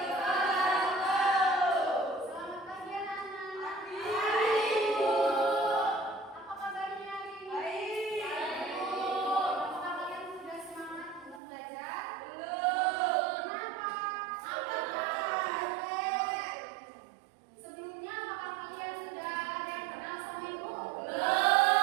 Selamat pagi anak-anak. Apa kabarnya hari ini? Apakah kalian sudah semangat untuk belajar? Kenapa? Sebelumnya apakah kalian sudah ada yang kenal sama ibu?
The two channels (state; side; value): drops out; left; at 11.4 s